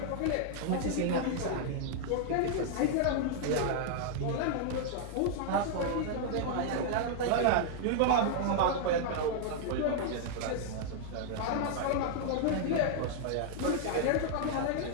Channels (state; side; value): different; both; correlation -0.01